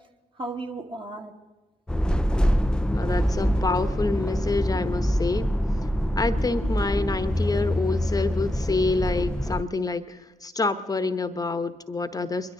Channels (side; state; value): both; normal; correlation 0.86